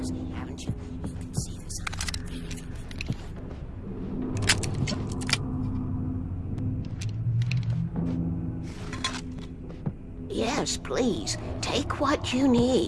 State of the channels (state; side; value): identical; both; correlation 1.00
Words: haven't you? You can see the sign. Yes, please. Take what you